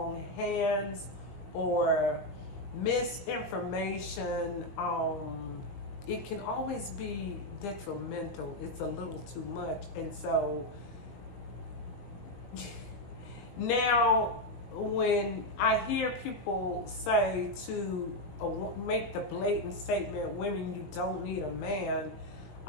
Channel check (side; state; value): right; late; 20 ms